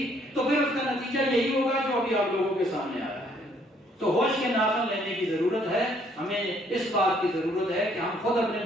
تو پھر اس کا نتیجہ یہی ہوگا جو ابھی آپ لوگوں کے سامنے آیا ہے۔ تو ہوش کے ناخن لینے کی ضرورت ہے، ہمیں اس بات کی ضرورت ہے کہ ہم خود اپنے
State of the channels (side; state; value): both; normal; correlation 0.65